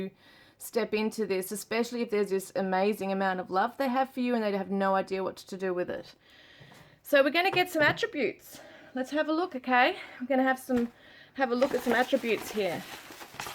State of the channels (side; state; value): both; identical; correlation 1.00